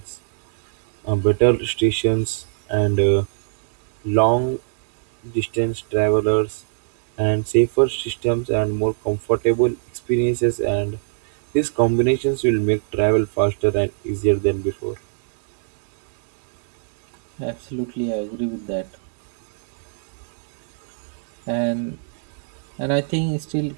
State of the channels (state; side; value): silent; left; digital silence